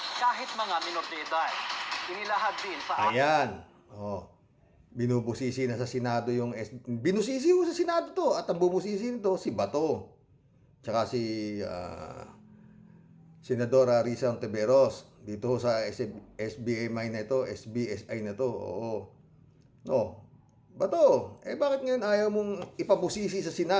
kahit mga minor de edad. Inilahad din sa Ayan. Oh. Binubusisi na sa Senado yung binusisi ko sa Senado to at ang bumusisi nito si Bato. Tsaka si Senadora Risa Ontiveros dito sa SBSI na ito, SBSI na to. Oo. No. Bato, bakit ngayon ayaw mong ipabusisi sa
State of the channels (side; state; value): both; identical; correlation 1.00